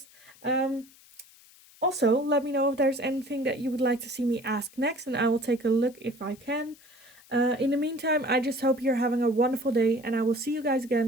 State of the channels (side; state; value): left; noise; hiss, 25 dB below the sound